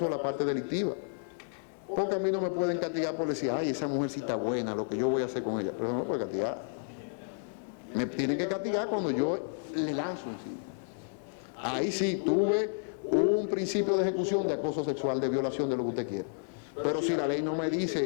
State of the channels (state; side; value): silent; right; digital silence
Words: la parte delictiva. Porque a mí no me pueden castigar por decir, ay, esa mujer sí está buena, lo que yo voy a hacer con ella. Pero no me puede castigar. Me tienen que castigar cuando yo le lanzo encima. Ahí sí tuve un principio de ejecución de acoso sexual, de violación, de lo que usted quiera. Pero si la ley no me